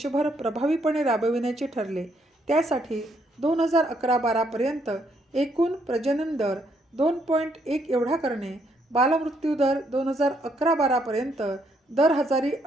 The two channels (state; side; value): normal; both; correlation 0.72